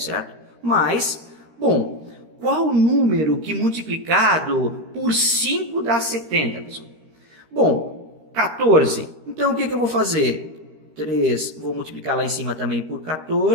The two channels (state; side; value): late; left; 13 ms